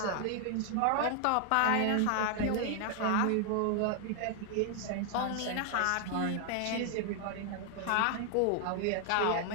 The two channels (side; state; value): both; different; correlation 0.00